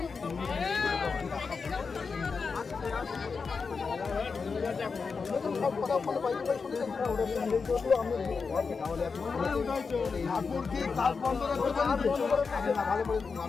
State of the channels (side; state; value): right; quieter; 5.0 dB